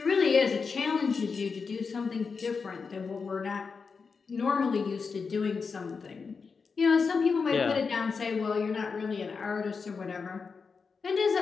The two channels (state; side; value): quieter; right; 5.1 dB